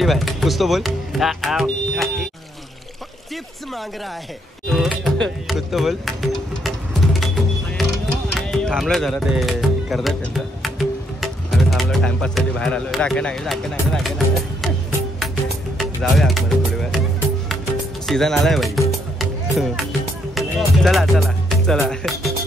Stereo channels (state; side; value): normal; both; correlation 0.73